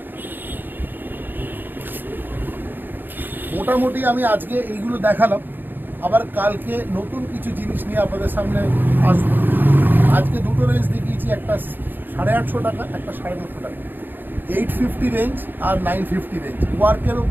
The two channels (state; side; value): late; left; 0.092 ms